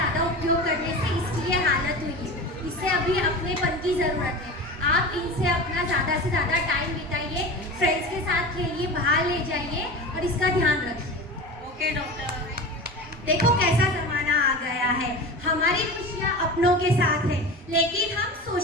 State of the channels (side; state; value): both; normal; correlation 0.30